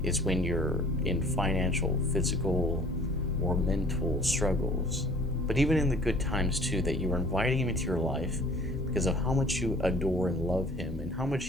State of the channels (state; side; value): normal; both; correlation 0.50